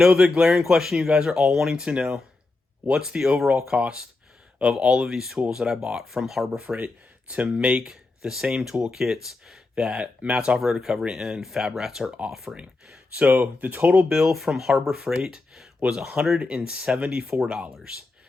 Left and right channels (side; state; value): right; quieter; 3.4 dB